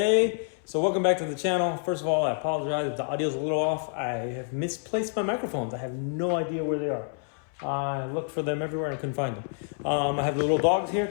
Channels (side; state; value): right; silent; 60 dB below the other